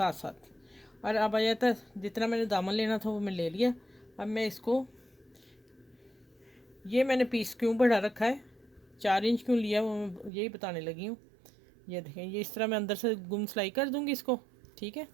साथ। और अब आ जाता है जितना मैंने दामन लेना था वो मैं ले लिया। अब मैं इसको, ये मैंने पीस क्यों बढ़ा रखा है, 4 इंच क्यों लिया वो मैं यही बताने लगी हूँ। ये देखें, ये इस तरह मैं अंदर से गुम सिलाई कर दूँगी इसको, ठीक है।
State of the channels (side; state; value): left; drops out; at 10.3 s